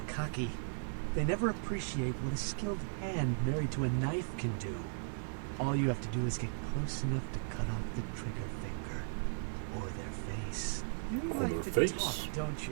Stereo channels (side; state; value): left; silent; digital silence